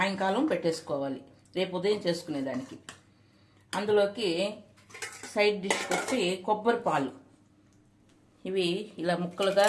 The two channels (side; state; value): both; identical; correlation 1.00